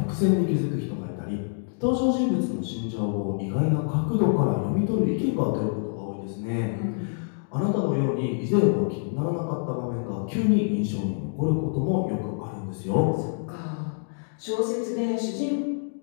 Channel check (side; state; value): right; silent; digital silence